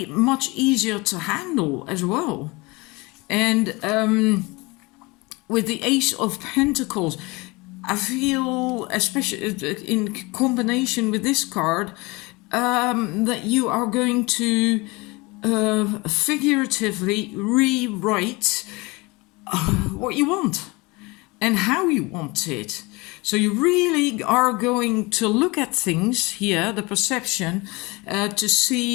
much easier to handle as well. And with the Ace of Pentacles, I feel, especially in combination with this card, that you are going to figuratively rewrite what you want and how you want it. So you really are going to look at things here, the perception, to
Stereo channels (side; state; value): right; quieter; 24.7 dB